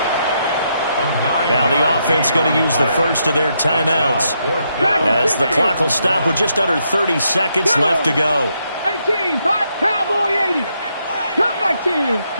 Now the offense going to use the first of their timeouts as the clock will stop with just under 30 seconds left to go. 18, Cowboy 80. Come 19,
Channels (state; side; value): inverted; both; correlation -0.78